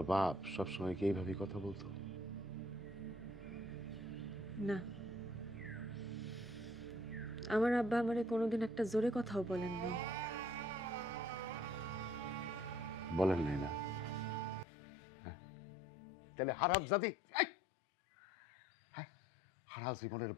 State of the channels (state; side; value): drops out; right; at 14.7 s